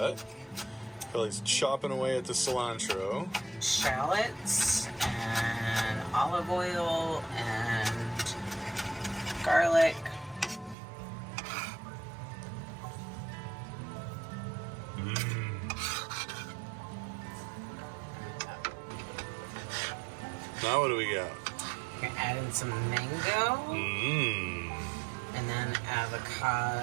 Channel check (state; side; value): drops out; left; at 10.8 s